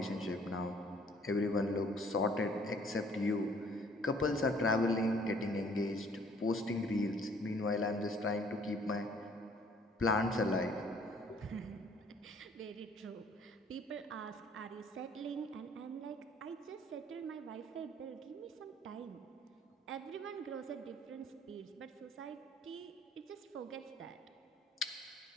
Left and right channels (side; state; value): both; normal; correlation 0.58